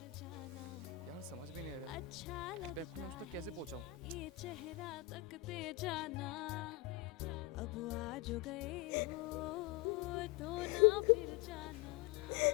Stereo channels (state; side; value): quieter; right; 16.3 dB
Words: यार समझ भी नहीं आ रहा इस बैग को मैं उस तक कैसे पहुंचाऊं। जाना अब आज गए हो तो ना फिर जाना।